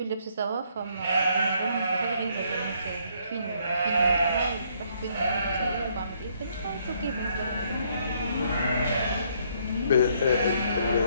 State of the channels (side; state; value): both; inverted; correlation -0.69